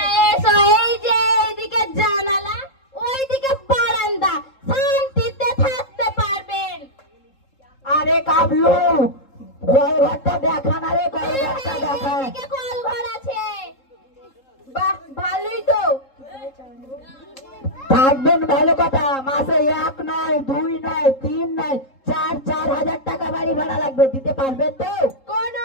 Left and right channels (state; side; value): late; right; 3.7 ms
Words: এসো। এই যে এইদিকে জানালা, ওইদিকে বারান্দা, শান্তিতে থাকতে পারবেন। আরে কাবলু, ঘরটা দেখা না রে, ঘরটা দেখা। এদিকে কল ঘর আছে। বাহ, ভালোই তো। থাকবেন ভালো কথা। মাসে 1 নয় 2 নয় 3 নয় 4,000 টাকা বাড়ি ভাড়া লাগবে। দিতে পারবেন তো? কোনো